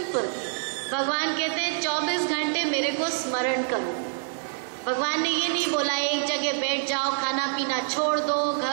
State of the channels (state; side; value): silent; left; digital silence